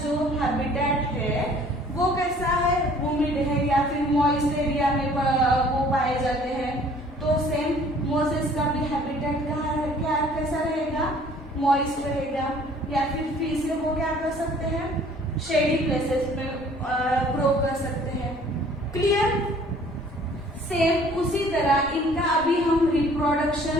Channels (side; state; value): both; normal; correlation 0.54